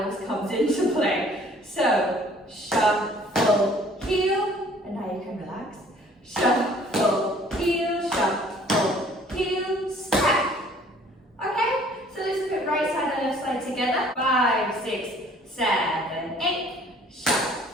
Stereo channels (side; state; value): both; normal; correlation 0.56